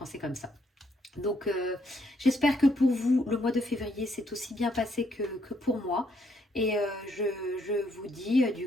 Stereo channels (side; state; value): both; normal; correlation 0.72